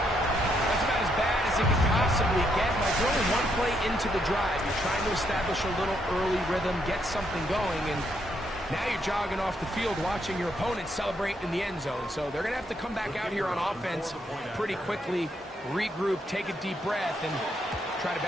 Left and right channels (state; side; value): normal; both; correlation 0.76